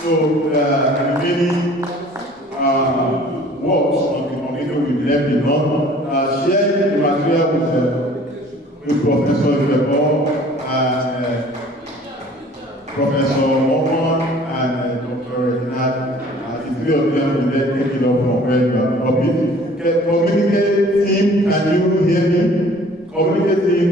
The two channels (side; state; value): both; normal; correlation 0.51